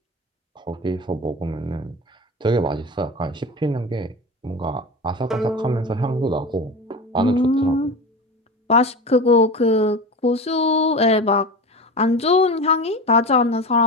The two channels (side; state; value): both; normal; correlation 0.28